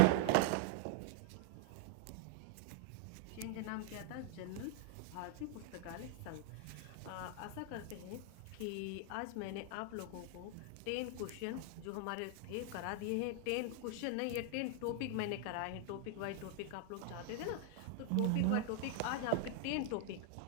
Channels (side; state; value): both; different; correlation 0.00